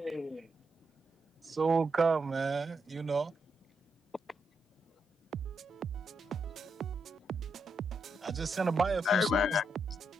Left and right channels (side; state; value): both; normal; correlation 0.81